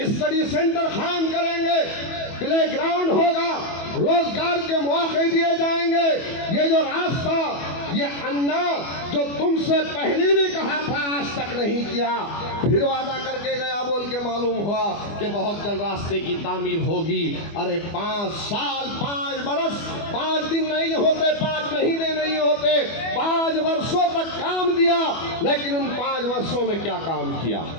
स्टडी सेंटर कायम करेंगे, प्ले ग्राउंड होगा, रोजगार के मौके दिए जाएंगे। ये जो रास्ता, ये अन्ना जो तुमसे पहले भी कहा था आज तक नहीं किया, फिर वादा करके गया बोल के मालूम हुआ कि बहुत जल्द रास्ते की तामीर होगी। अरे 5 साल 5 बरस 5 दिन नहीं होते, 5 महीने नहीं होते, 5 वर्षों तक काम दिया, लेकिन उन 5 वर्षों में क्या काम किया?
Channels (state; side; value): late; right; 25 ms